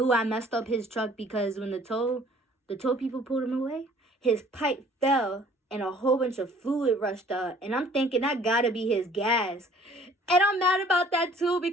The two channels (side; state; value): both; normal; correlation 0.54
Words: I messed up his truck, because when the tow people pulled him away, his pipe fell and a whole bunch of fluid rushed out. And I'm thinking that gotta be his gas. And I'm mad about that too,